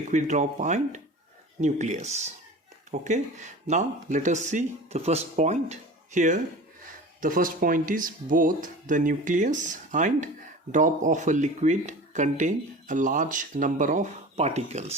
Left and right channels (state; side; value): normal; both; correlation 0.37